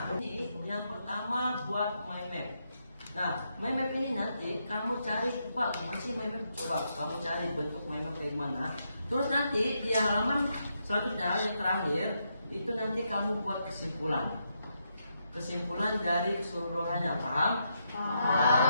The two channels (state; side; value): inverted; both; correlation -0.81